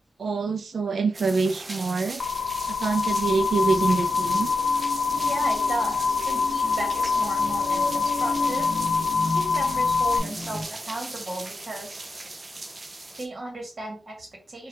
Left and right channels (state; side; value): normal; both; correlation 0.87